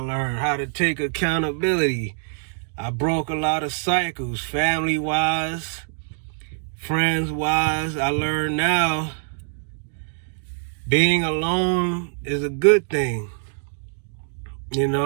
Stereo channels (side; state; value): left; silent; digital silence